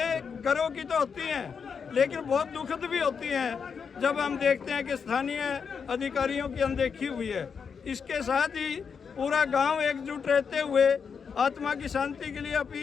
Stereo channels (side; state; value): right; quieter; 6.2 dB